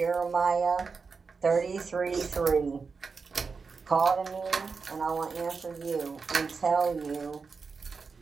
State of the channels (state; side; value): quieter; left; 4.9 dB